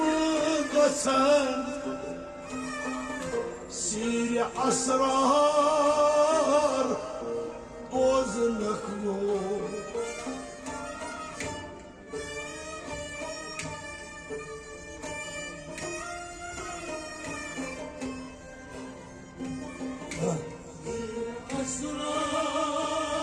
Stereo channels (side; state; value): both; identical; correlation 1.00